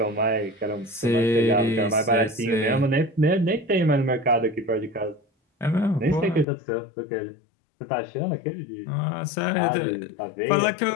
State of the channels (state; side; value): drops out; right; at 6.5 s